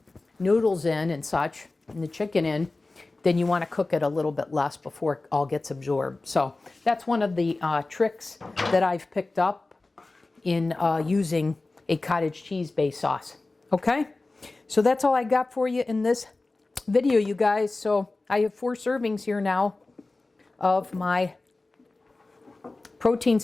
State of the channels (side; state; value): right; quieter; 3.2 dB